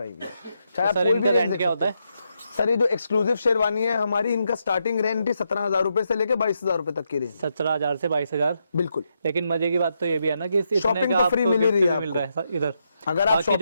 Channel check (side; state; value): both; inverted; correlation -0.82